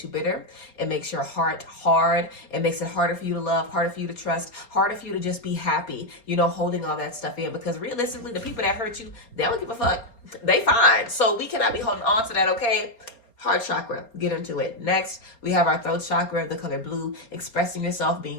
you bitter. It makes your heart hard. It makes it harder for you to love, harder for you to trust, harder for you to just be happy, you know, holding all that stuff in. Because realistically, the people that hurt you, they don't give a fuck. They fine. So we cannot be holding on to that, okay? Heart chakra, get into it. Next, we have our throat chakra, the color blue, expressing yourself,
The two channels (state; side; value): late; right; 4.3 ms